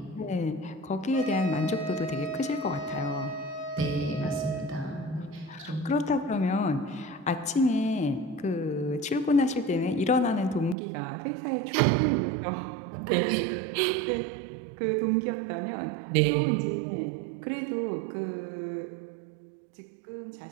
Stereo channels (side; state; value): left; drops out; at 10.8 s